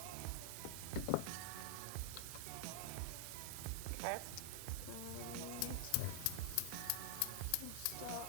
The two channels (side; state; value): both; different; correlation 0.00